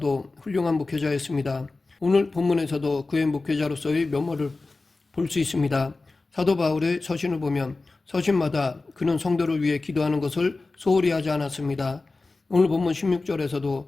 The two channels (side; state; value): right; quieter; 3.5 dB